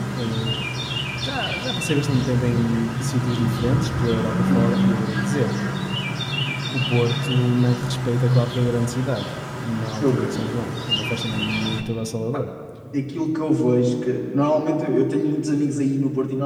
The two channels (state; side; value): identical; both; correlation 1.00